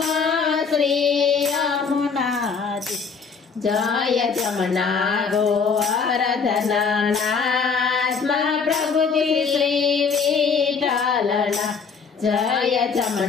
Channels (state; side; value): quieter; right; 5.5 dB